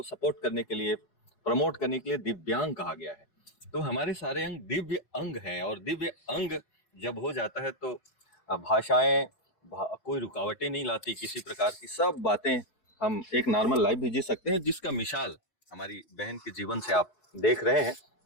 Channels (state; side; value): late; right; 4.7 ms